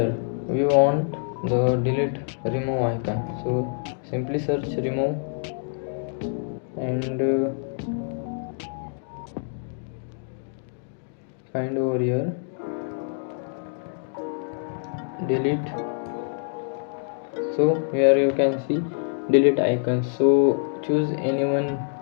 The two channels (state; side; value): silent; right; digital silence